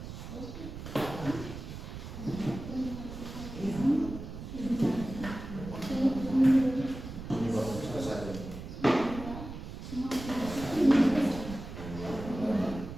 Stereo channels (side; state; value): right; noise; rumble, 10 dB below the sound